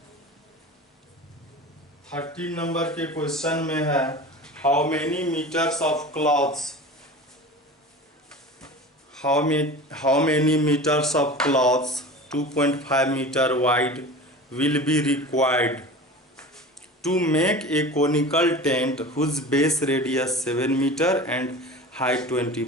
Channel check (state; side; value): normal; both; correlation 0.35